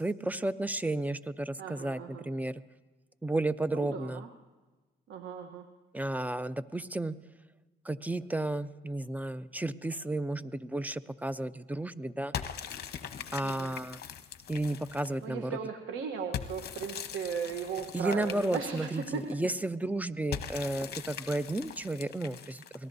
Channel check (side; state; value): both; normal; correlation 0.76